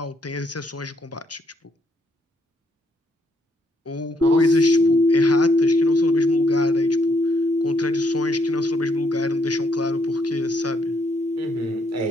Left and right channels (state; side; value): normal; both; correlation 0.73